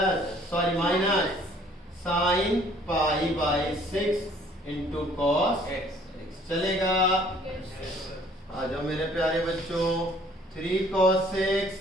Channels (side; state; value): both; normal; correlation 0.58